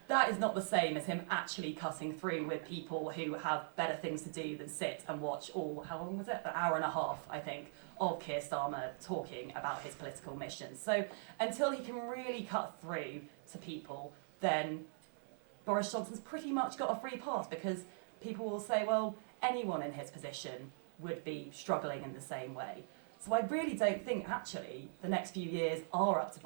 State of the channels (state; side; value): silent; left; 51 dB below the other